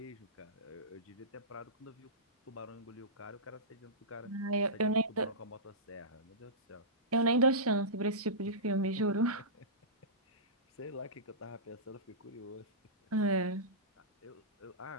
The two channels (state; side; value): normal; both; correlation -0.18